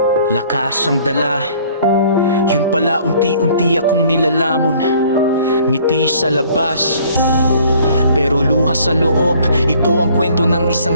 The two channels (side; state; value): both; inverted; correlation -0.57